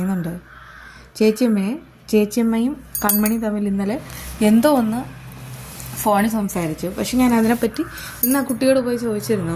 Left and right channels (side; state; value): both; identical; correlation 1.00